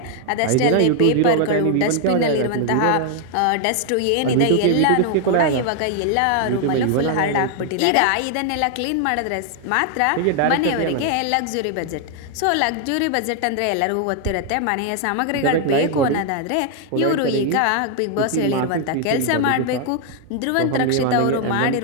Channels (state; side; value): different; both; correlation 0.00